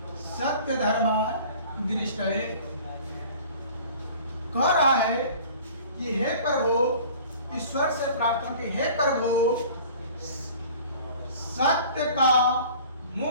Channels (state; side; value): inverted; both; correlation -0.46